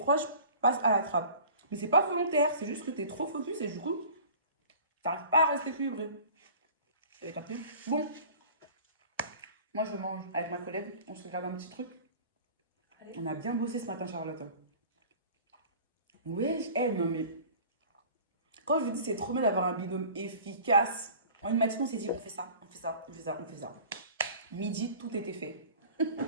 passent à la trappe. Mais c'est pas volontaire, c'est juste que t'es trop focus et du coup, t'arrives pas à rester équilibré. Vous avez capté? Bon. Moi, je mange avec ma collègue. On se regarde un petit truc. Allez. On a bien bossé ce matin, Charlotte. Oui, non mais... Quand je vous dis c'est trop bien d'avoir un binôme efficace. En une matinée, on s'est dit, on fait ça, on fait ça, on fait ça, on fait ça. Midi, tout était fait.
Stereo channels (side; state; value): both; inverted; correlation -0.44